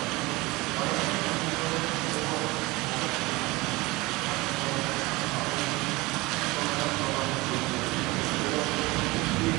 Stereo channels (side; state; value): left; quieter; 22.0 dB